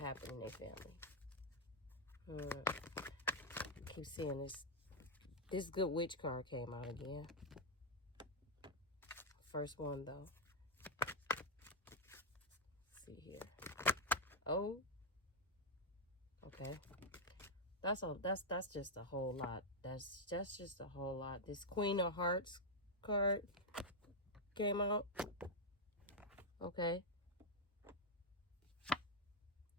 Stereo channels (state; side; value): normal; both; correlation -0.03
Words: in their family. I keep seeing this good witch card came out again. First one though. Let's see here. Oh, okay. That's just a whole lot. That's just a whole lot. This Queen of Hearts card came out. Okay.